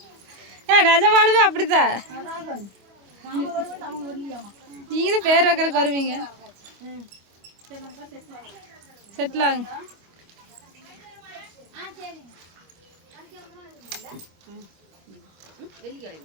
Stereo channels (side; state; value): left; late; 25 ms